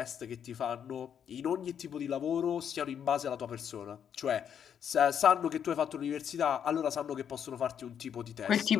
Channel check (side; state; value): right; quieter; 8.4 dB